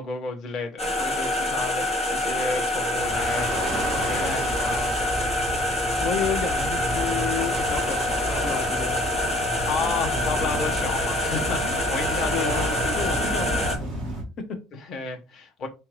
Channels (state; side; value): normal; both; correlation 0.55